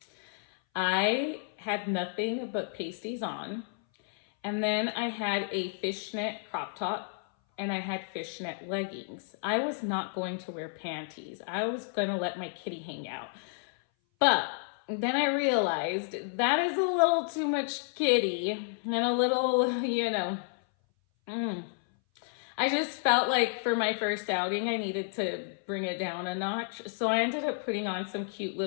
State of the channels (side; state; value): right; silent; 57 dB below the other